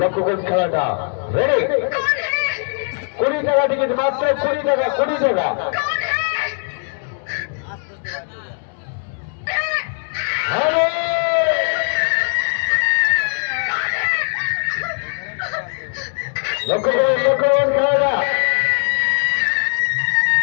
লক্ষ্য করুন খেলাটা রেডি। 20 টাকা টিকিট, মাত্র 20 টাকা, 20 টাকা। লক্ষ্য করুন খেলাটা।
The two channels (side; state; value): right; silent; 60 dB below the other